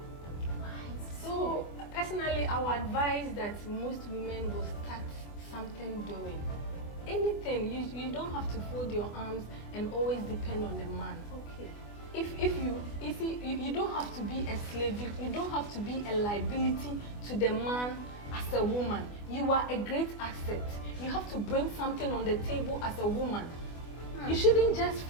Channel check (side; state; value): right; late; 24 ms